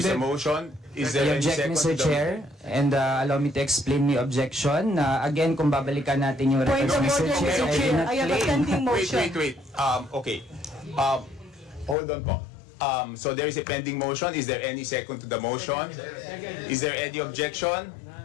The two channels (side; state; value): right; drops out; at 12.0 s